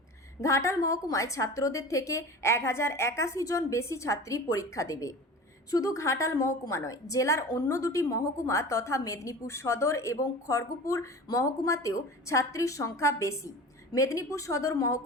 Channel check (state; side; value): normal; both; correlation 0.36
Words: ঘাটাল মহকুমায় ছাত্রদের থেকে 1,081 জন বেশি ছাত্রী পরীক্ষা দেবে। শুধু ঘাটাল মহকুমা নয়, জেলার অন্য দুটি মহকুমা তথা মেদিনীপুর সদর এবং খড়গপুর মহকুমাতেও ছাত্রীর সংখ্যা বেশি। মেদিনীপুর সদর